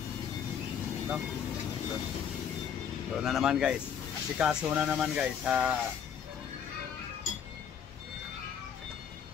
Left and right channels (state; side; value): quieter; right; 8.0 dB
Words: No? So na naman guys. Asikaso na naman guys sa